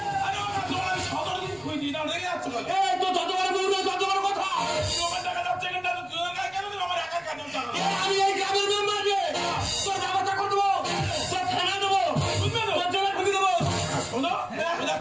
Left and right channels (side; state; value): left; noise; rumble, 28 dB below the sound